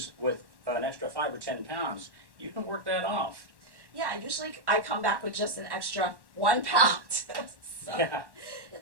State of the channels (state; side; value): late; left; 1.1 ms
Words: with an extra 5 or 10 pounds. You can work that off. Yeah, usually I come back with just an extra 1 pound. So Yeah.